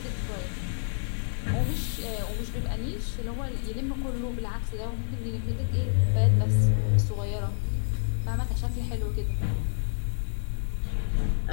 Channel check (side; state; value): right; silent; digital silence